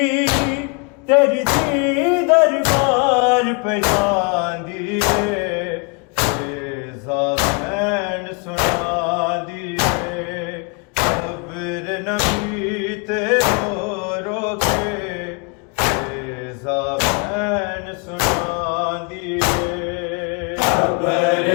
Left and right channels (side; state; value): right; quieter; 33.9 dB